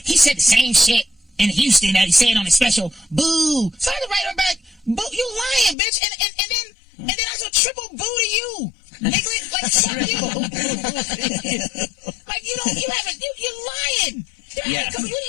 said the same shit in Houston that he said on his special. Boo. So I had to write her back, boo, you lying, bitch. And then I said, triple boo to you. Nigga, like, fuck you. Like, you're lying. Yeah. Why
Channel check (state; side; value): drops out; right; at 5.8 s